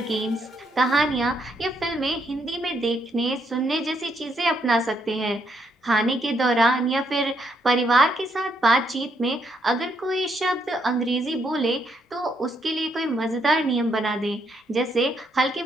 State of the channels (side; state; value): both; normal; correlation 0.75